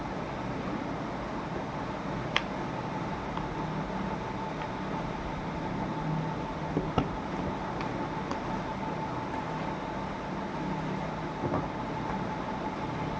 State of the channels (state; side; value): identical; both; correlation 1.00